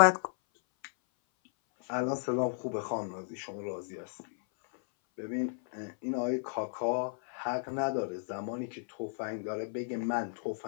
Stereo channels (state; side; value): silent; right; 55 dB below the other